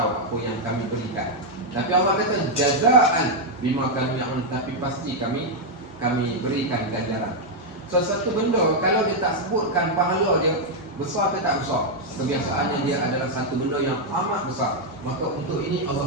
apa yang kami berikan. Tapi Allah kata jazaan bima kami ya'malun, tapi pasti kami berikan ganjaran. Sesuatu benda kalau dia tak sebutkan pahala dia besar ke tak besar, kebiasaannya dia adalah satu benda yang amat besar, maka untuk ini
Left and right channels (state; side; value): normal; both; correlation -0.01